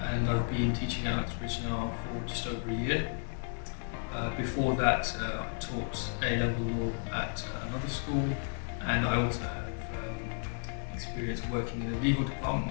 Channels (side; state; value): right; silent; 56 dB below the other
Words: I've been teaching at Uxbridge now for just over a year. Before that, I taught A-level law at another school, and I also have experience working in a legal department,